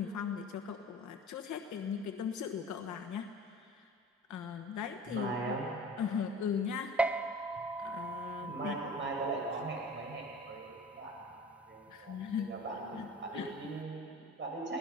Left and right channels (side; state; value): both; normal; correlation 0.41